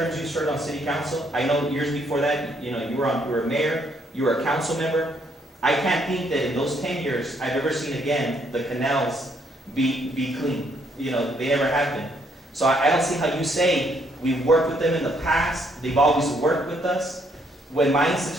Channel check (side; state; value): both; normal; correlation 0.70